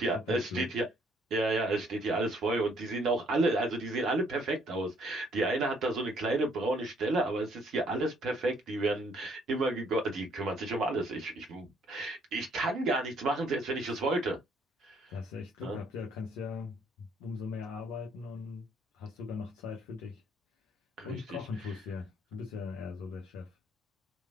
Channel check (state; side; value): normal; both; correlation 0.65